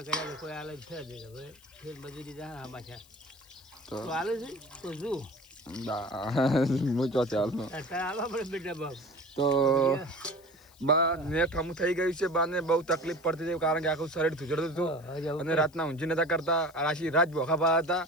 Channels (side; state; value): left; noise; hiss, 27 dB below the sound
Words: કર્યા તો કોઈ હાલત છે જ હવે ફેર મજૂરી જા આમાં છે તો હાલે છે તો શું હું ચોથી હાલનો હાલવા પડે બેટા બાપ. તો બા નેટ હમું થઈ ગયું છે. બાને બહુ તકલીફ પડતી હતી, કારણ કે આખું શરીર ધૂજડતું હતું અને રાતના ઊંઘી નતા કરતા. રાશી રાત બોખા પા હતા.